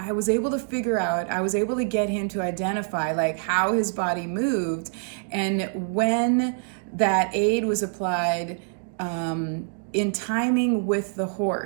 was able to get him to identify like how his body moved and when that aid was applied, in timing with the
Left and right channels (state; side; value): silent; left; digital silence